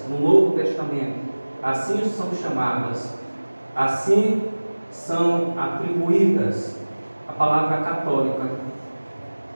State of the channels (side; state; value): both; inverted; correlation -1.00